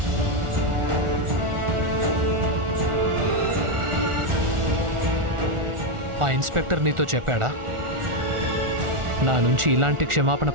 ఆ ఇన్స్పెక్టర్ నీతో చెప్పాడా నా నుంచి ఇలాంటి క్షమాపణ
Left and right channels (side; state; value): left; late; 1.4 ms